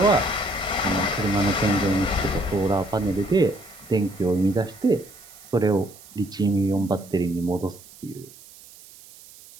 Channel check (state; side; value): noise; right; hiss, 21 dB below the sound